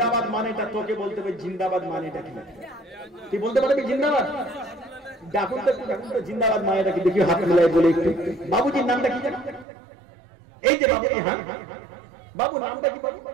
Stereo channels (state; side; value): drops out; left; at 9.7 s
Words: মানেটা তোকে বলতে হবে, জিন্দাবাদ মানেটা কি তুই বলতে পারবি? জিন্দাবাদ ডাকুন তো, জিন্দাবাদ মানেটা কি দেখি, হাত মিলাই বলে একটু। বাবুজির নামটা কি জানো? এই যে বাবুজি, হ্যাঁ বাবু নামটা কি বাবু?